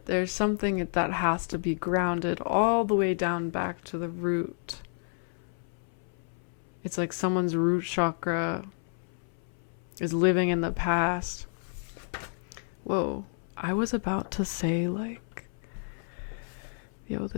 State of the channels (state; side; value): silent; right; 58 dB below the other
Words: there's something that has to be grounded all the way down back to the root. It's like someone's root chakra is living in the past. Whoa, I was about to say, like, yo,